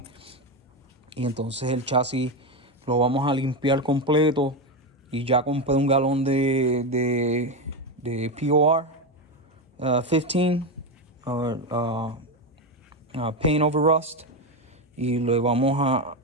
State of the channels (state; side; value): normal; both; correlation 0.13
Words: y entonces el chasis lo vamos a limpiar completo, y ya compré un galón de POR 15 paint over rust, y le vamos